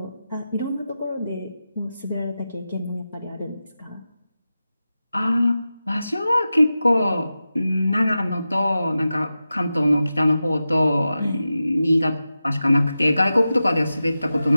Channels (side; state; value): both; inverted; correlation -0.93